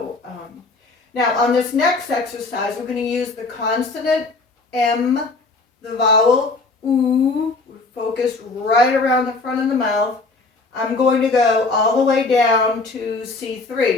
now on this next exercise, we're going to use the consonant M, the vowel oo, focused right around the front of the mouth. I'm going to go all the way down to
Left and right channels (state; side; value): quieter; right; 3.6 dB